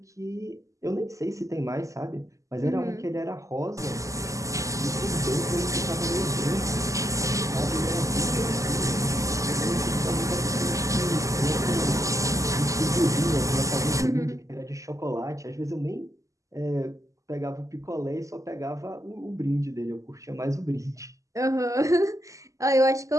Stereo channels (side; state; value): left; late; 0.16 ms